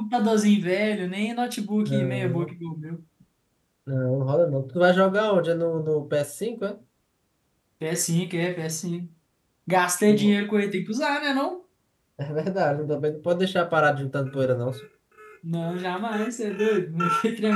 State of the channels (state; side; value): identical; both; correlation 1.00